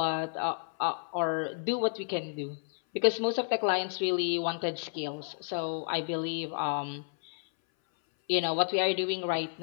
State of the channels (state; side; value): silent; right; 57 dB below the other